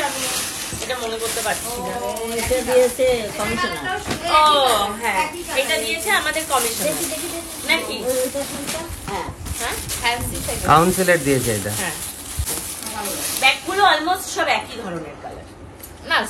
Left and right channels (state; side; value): identical; both; correlation 1.00